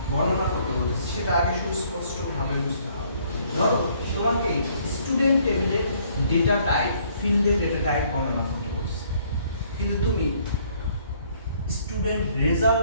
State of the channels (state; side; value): inverted; both; correlation -0.64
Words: বর্ণনা করতে বলতেছে সেটা আগে সুস্পষ্টভাবে বুঝতে হবে। ধরো তোমাকে স্টুডেন্ট টেবিলের ডেটা টাইপ ফিল্ডের ডেটা টাইপ বর্ণনা করতে বলছে, কিন্তু তুমি স্টুডেন্ট রেজাল্ট